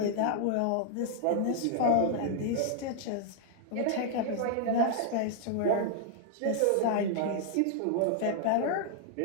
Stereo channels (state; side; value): different; both; correlation -0.01